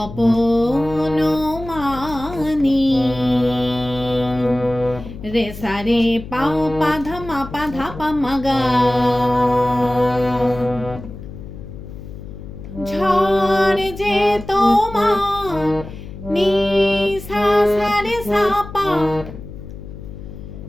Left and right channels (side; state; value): left; noise; hum, 13 dB below the sound